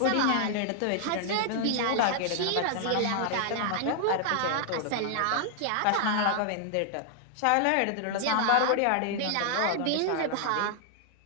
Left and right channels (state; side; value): different; both; correlation 0.00